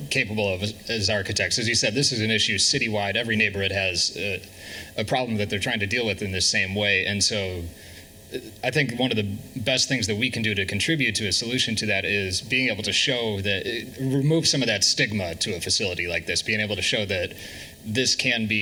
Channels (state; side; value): identical; both; correlation 1.00